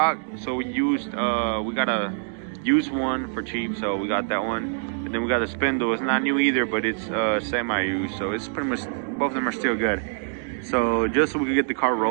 so we got a used one for cheap, so we got that one. And then we got the spindle. It's not new either, but it's semi-used, so it's pretty much both of them are still good. So just so we can get the car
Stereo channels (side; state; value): left; silent; digital silence